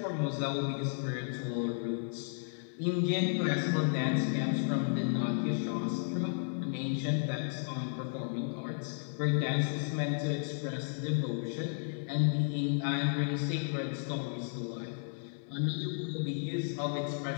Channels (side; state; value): right; silent; 55 dB below the other